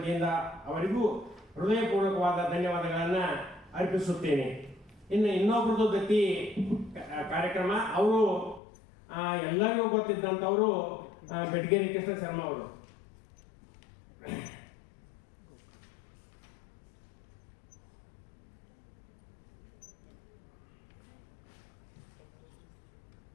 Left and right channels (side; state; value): right; drops out; at 8.6 s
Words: ಅವರಿಗೂ ಹೃದಯಪೂರ್ವಕವಾದ ಧನ್ಯವಾದಗಳನ್ನು ಅರ್ಪಿಸುತ್ತೇನೆ. ಇನ್ನೊಬ್ಬರದ್ದು ದತ್ತಿ ಕಾರ್ಯಕ್ರಮ. ಅವರು ಎಲ್ಲರಿಗೂ ಗೊತ್ತಿದ್ದಂಥವರು ಬೆಟಗೇರಿ ಕೃಷ್ಣ ಶರ್ಮಾ ಅವರು.